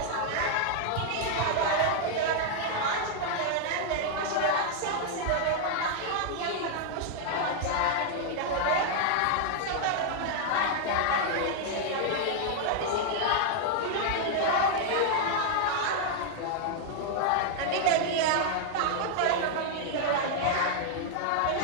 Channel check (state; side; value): different; both; correlation 0.00